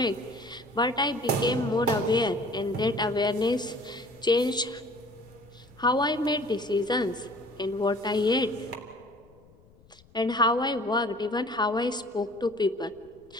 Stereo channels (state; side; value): noise; left; rumble, 28 dB below the sound